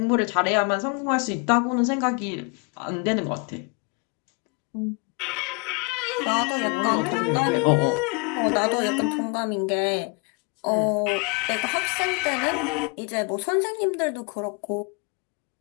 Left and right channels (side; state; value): right; quieter; 32.6 dB